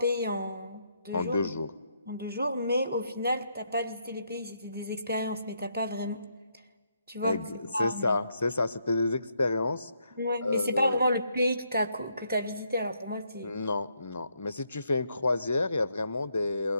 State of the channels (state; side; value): inverted; both; correlation -0.75